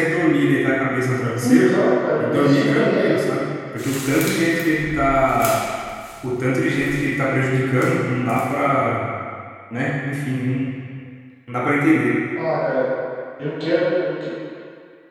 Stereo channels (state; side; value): identical; both; correlation 1.00